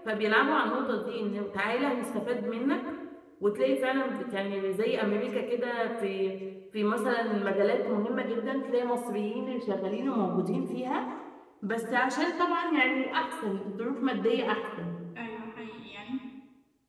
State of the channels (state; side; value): identical; both; correlation 1.00